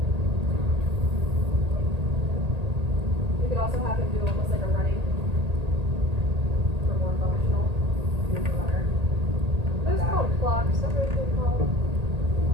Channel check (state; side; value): late; left; 1.8 ms